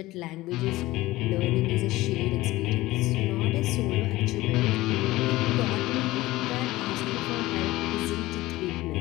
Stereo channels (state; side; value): quieter; right; 18.1 dB